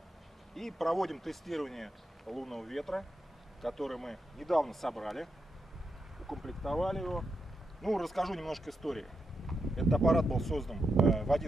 и проводим тестирование лунного ветра, который мы недавно собрали, укомплектовали его. Ну, расскажу немножко истории. Этот аппарат был создан в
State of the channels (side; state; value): both; normal; correlation 0.85